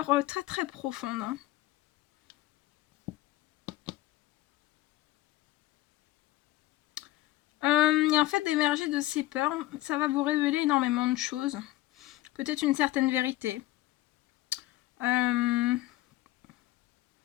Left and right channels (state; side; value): quieter; right; 16.8 dB